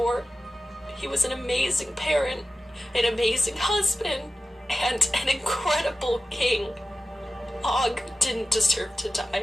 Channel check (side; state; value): both; normal; correlation 0.94